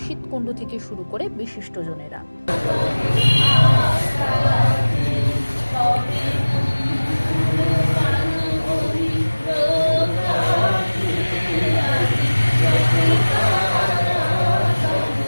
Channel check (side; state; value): both; inverted; correlation -1.00